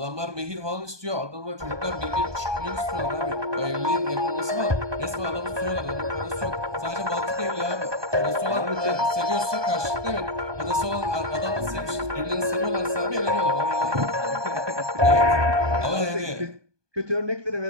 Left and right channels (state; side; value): late; left; 1.2 ms